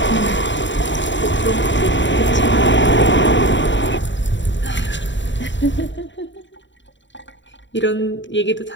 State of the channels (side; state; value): right; late; 0.54 ms